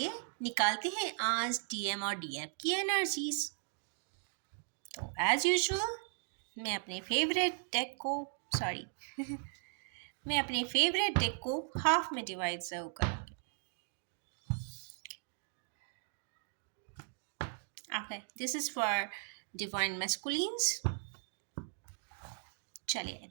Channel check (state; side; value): silent; left; 53 dB below the other